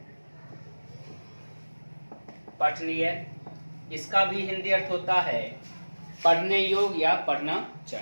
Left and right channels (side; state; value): both; inverted; correlation -1.00